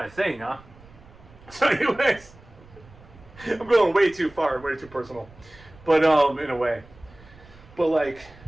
of thing, huh? So anyways, I'm going way too far, way too personal, but in a way. But like,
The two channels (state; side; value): noise; right; rumble, 23 dB below the sound